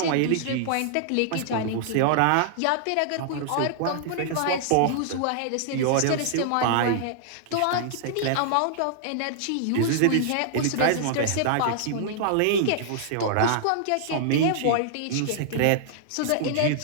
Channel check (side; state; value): both; different; correlation -0.01